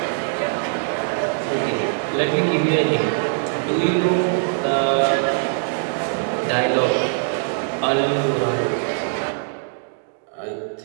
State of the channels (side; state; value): left; silent; digital silence